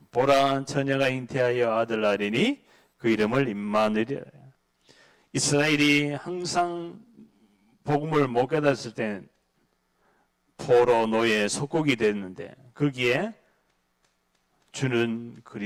보라, 처녀가 잉태하여 아들 낳으리니 그 이름을 임마누엘이라. 이스라엘이 항상 복음을 못 깨달았을 때 포로 노예 속국이 됐는데 거기에 주는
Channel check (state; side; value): identical; both; correlation 1.00